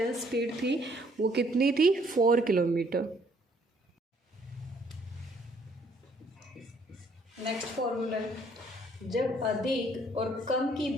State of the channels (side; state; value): both; normal; correlation 0.64